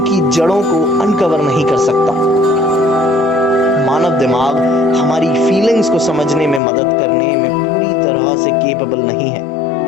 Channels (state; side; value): drops out; right; at 6.6 s